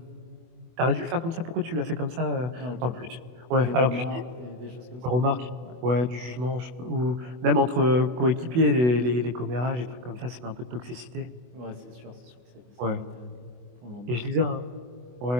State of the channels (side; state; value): left; late; 24 ms